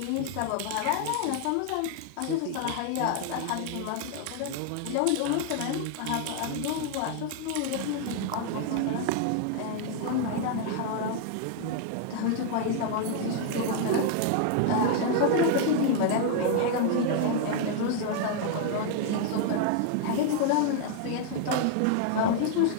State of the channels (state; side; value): different; both; correlation 0.00